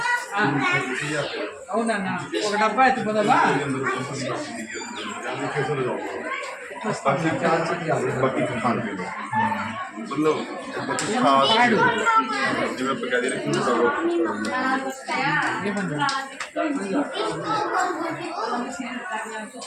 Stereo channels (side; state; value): both; identical; correlation 1.00